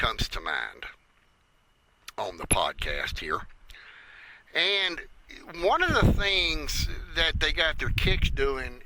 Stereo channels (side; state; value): both; identical; correlation 1.00